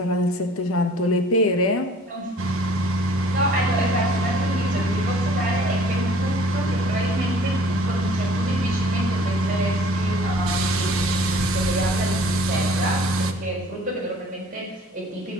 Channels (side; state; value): both; normal; correlation 0.52